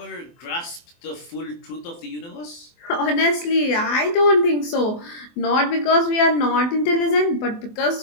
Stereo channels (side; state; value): right; late; 24 ms